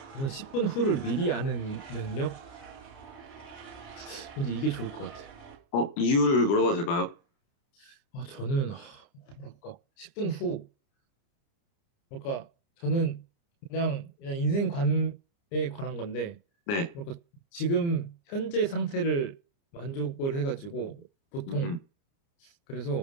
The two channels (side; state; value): right; late; 29 ms